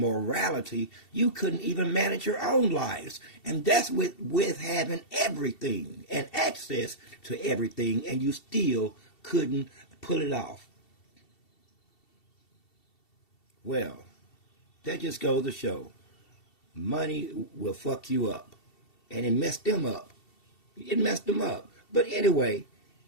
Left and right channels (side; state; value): right; late; 2.7 ms